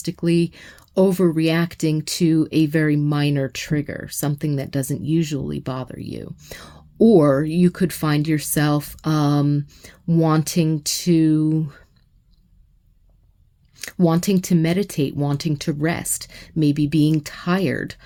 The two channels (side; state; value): both; identical; correlation 1.00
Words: overreacting to a very minor trigger, something that doesn't usually bother you. Or you could find yourself wanting to meditate, wanting to rest, maybe being tired.